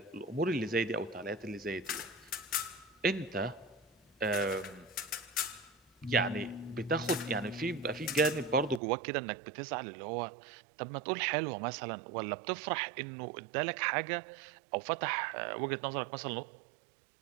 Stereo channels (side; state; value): left; drops out; at 8.8 s